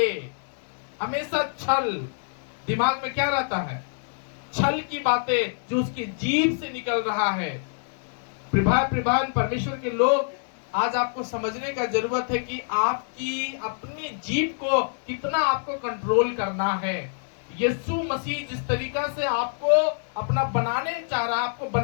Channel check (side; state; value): right; silent; 61 dB below the other